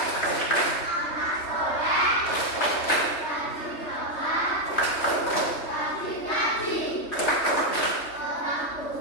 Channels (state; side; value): late; right; 3.2 ms